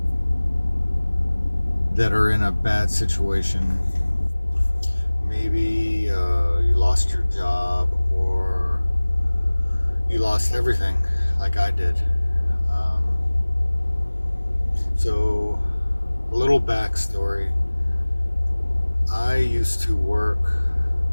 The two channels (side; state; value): both; inverted; correlation -1.00